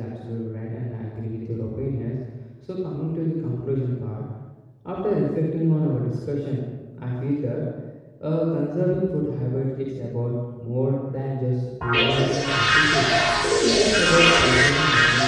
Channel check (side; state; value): both; identical; correlation 1.00